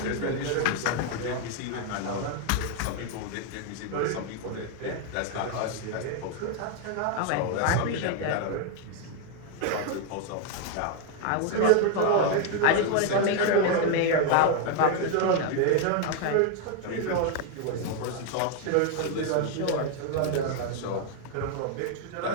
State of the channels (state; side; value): different; both; correlation 0.01